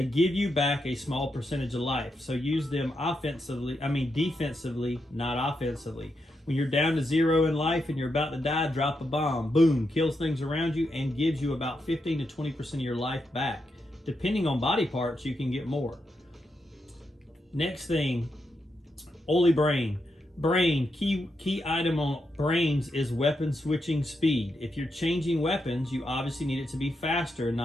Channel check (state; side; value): normal; both; correlation 0.84